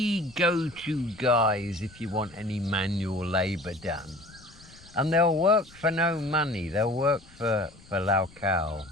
go-to guys if you want any manual labour done. And they'll work for no money. They'll work for Lau Khao.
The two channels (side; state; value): left; noise; rumble, 24 dB below the sound